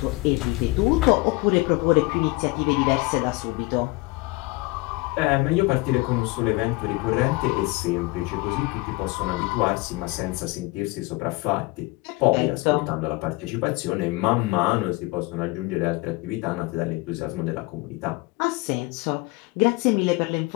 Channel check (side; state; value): right; quieter; 23.3 dB